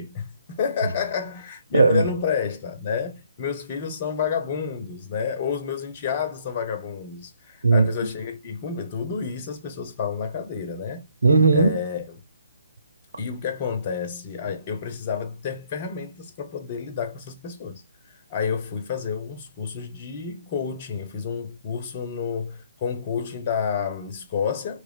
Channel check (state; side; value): inverted; both; correlation -0.63